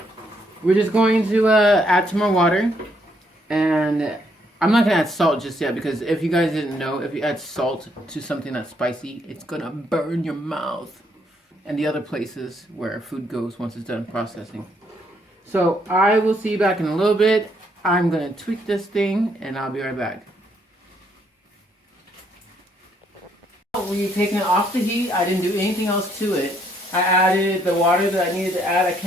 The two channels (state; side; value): normal; both; correlation 0.71